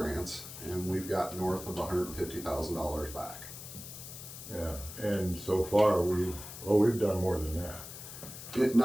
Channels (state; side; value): noise; left; hiss, 12 dB below the sound